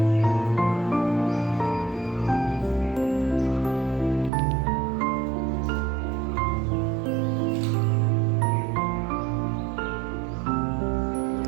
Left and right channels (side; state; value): left; drops out; at 4.3 s